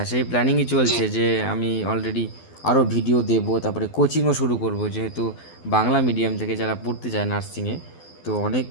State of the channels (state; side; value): late; right; 12 ms